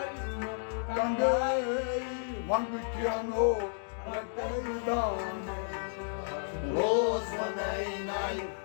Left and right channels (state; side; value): silent; right; digital silence